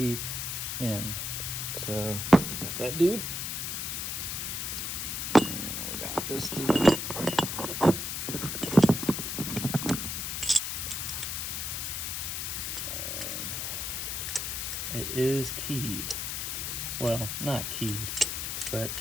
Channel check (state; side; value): noise; left; hiss, 2 dB below the sound